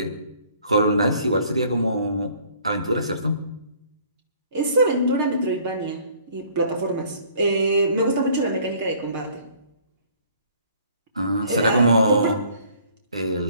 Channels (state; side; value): inverted; both; correlation -0.57